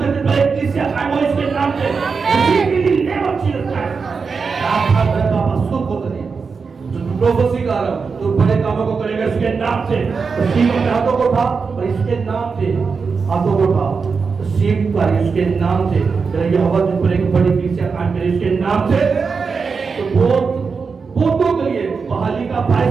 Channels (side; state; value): left; quieter; 5.1 dB